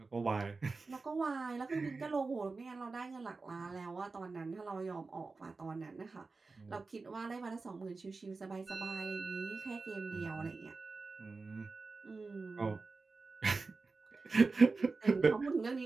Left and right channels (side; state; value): left; quieter; 4.0 dB